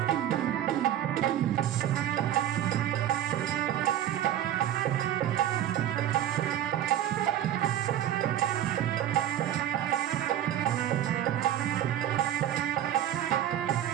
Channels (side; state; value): left; quieter; 11.4 dB